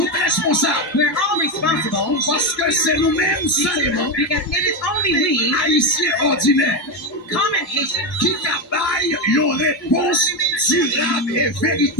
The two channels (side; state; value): both; normal; correlation 0.12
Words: responsables. We're all responsible Parce que c'est nous-mêmes seulement, because it is only we, haïtiens ordinaires, common Haitians, qui travaillent une réponse durable et